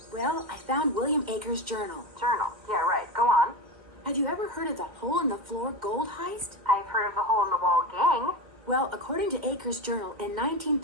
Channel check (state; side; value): late; left; 2.2 ms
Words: Well, I found William Akers' journal. Journal. Yeah, right. Go on. Have you ever heard of the hole-in-the-floor gold heist? I've heard of the hole-in-the-wall gang. Well, according to Akers' journal, in